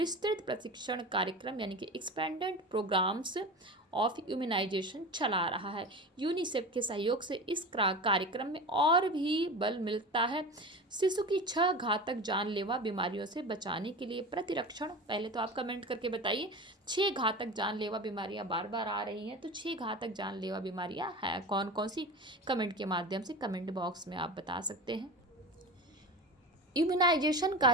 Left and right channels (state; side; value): normal; both; correlation 0.30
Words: प्रशिक्षण कार्यक्रम यानी कि एक्सपेंडेड प्रोग्राम्स ऑफ इम्यूनाइजेशन चला रहा है। यूनिसेफ के सहयोग से इस कार्यक्रम में और भी बल मिलता है। शिशु की 6 घातक जानलेवा बीमारियों से बचाने के लिए प्रतिरक्षण, पहले तो आप कमेंट करके बताइए 6 घातक जानलेवा बीमारियां बार बार आ रही हैं, तो 6 घातक जानलेवा बीमारियां हैं कौन कौन सी, कमेंट के माध्यम से कमेंट बॉक्स में आप बता सकते हैं। इम्यूनाइजेशन